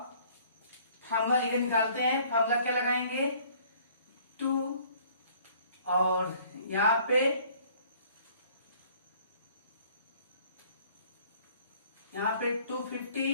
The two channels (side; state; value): both; inverted; correlation -0.56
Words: फार्मूला ये निकालते हैं। फार्मूला क्या लगाएंगे, 2 और यहां पे 250